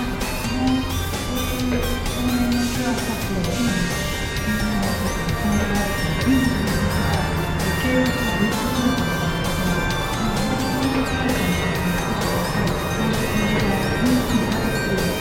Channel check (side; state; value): both; identical; correlation 1.00